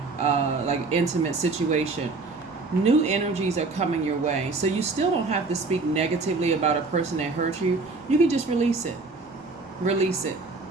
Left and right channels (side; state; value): left; quieter; 3.8 dB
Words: like intimate situation. New energies are coming your way. So you still don't have to speak negatively about a person that hurt you. You can just release it. Release it,